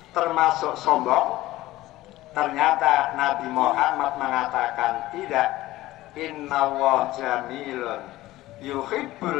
termasuk sombong? Ternyata Nabi Muhammad mengatakan tidak. Innallaha jamilun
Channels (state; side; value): quieter; right; 16.8 dB